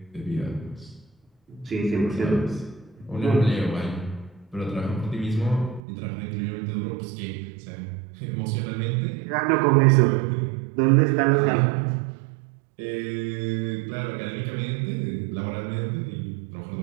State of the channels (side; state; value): left; drops out; at 5.8 s